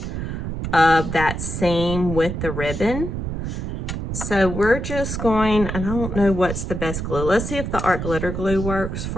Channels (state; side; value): noise; right; rumble, 4 dB below the sound